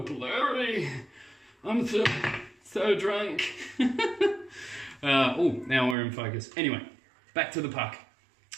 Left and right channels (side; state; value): left; drops out; at 6.0 s